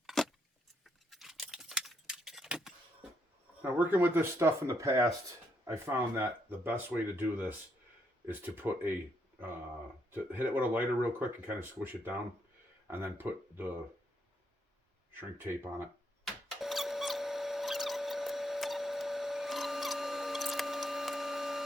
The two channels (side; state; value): both; normal; correlation 0.76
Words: Now, working with this stuff in the past, I found that the best way to do this is to put to hit it with a lighter real quick and kind of squish it down. and then put the shrink tape on it.